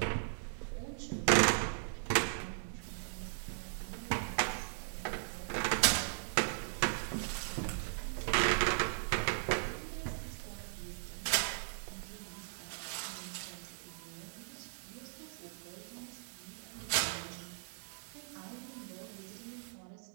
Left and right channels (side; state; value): left; silent; digital silence